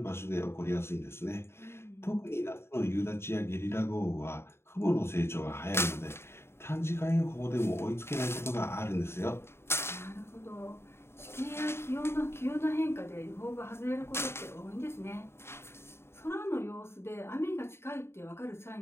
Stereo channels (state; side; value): late; right; 0.12 ms